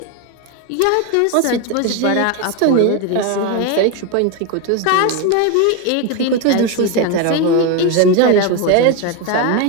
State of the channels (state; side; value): different; both; correlation 0.02